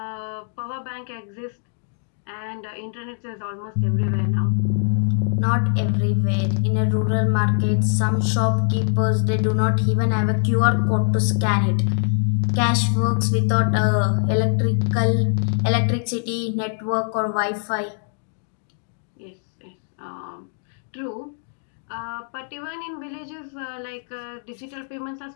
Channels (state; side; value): silent; right; digital silence